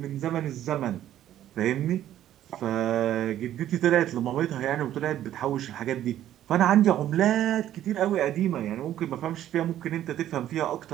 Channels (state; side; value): quieter; left; 12.1 dB